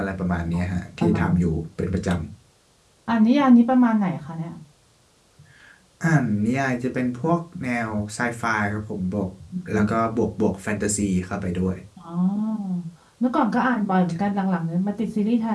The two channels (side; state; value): both; identical; correlation 1.00